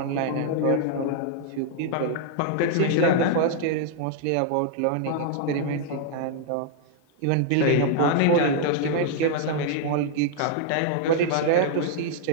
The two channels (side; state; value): both; different; correlation -0.01